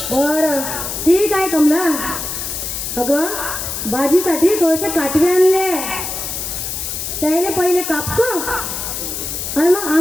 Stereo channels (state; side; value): noise; left; hiss, 5 dB below the sound